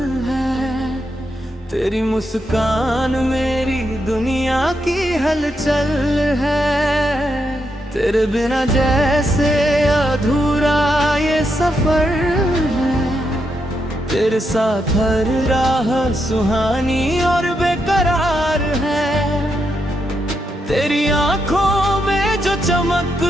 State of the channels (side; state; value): both; normal; correlation 0.82